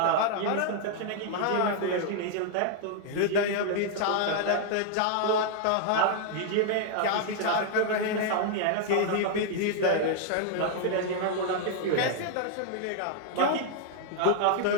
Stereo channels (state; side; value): different; both; correlation -0.01